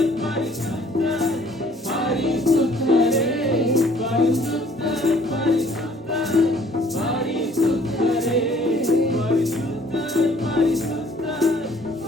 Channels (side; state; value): both; normal; correlation 0.58